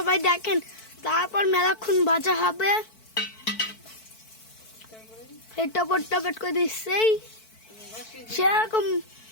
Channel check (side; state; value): right; late; 4.6 ms